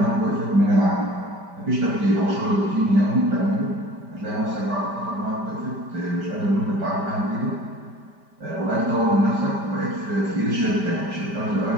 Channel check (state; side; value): late; left; 5.1 ms